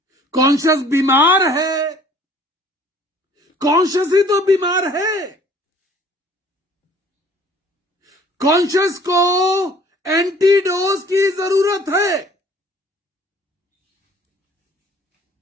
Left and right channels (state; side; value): normal; both; correlation 0.54